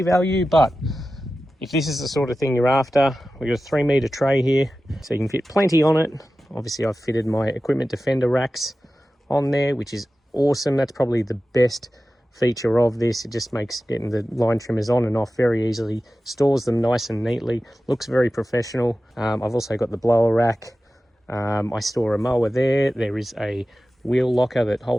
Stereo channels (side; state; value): both; normal; correlation 0.94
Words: value, but if this is the sort of thing you're after, we've got a 3-meter tray here, so you can fit plenty on it. Obviously I've fitted my equipment defender racks on there, which is awesome. That's probably the best feature of this. It just makes getting the line trimmers on and off very easily, stores them nice and neatly, looks very professional. I've also got the blower rack. I store a mower there. There is a wheel locker that